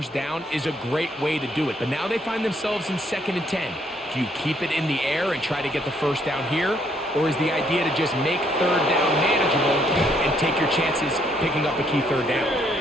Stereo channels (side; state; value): both; normal; correlation 0.69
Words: down is a great way to do it. But now they find themselves in 2nd and 10. Do you keep it in the air and try to get the 1st down here? Or is the idea to just make 3rd down manageable and take your chances picking up a key 3rd down?